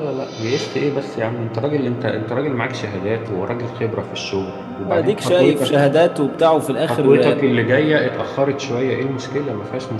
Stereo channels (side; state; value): both; identical; correlation 1.00